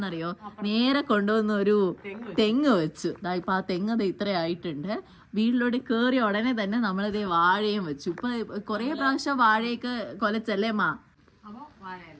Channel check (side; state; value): both; identical; correlation 1.00